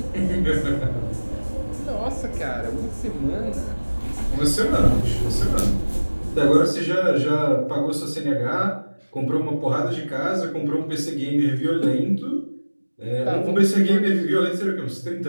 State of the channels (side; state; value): both; inverted; correlation -1.00